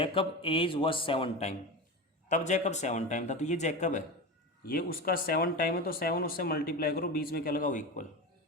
age was 7 time, तब जैकब 7 टाइम था, तो ये जैकब है, ये उसका 7 टाइम है, तो 7 उससे मल्टीप्लाई करो, बीच में क्या लगाओ इक्वल,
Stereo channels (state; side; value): normal; both; correlation 0.24